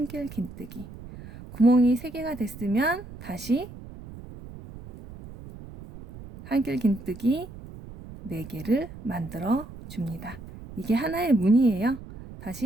긴뜨기. 구멍이 3개가 됐으면 다시 한길 긴뜨기 4개를 만들어 줍니다. 이게 하나의 문이에요.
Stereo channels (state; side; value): noise; right; rumble, 15 dB below the sound